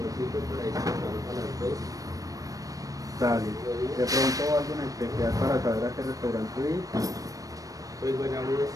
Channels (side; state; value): left; late; 0.17 ms